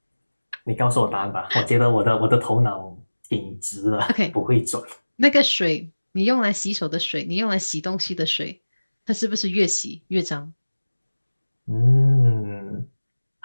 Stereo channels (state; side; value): inverted; both; correlation -1.00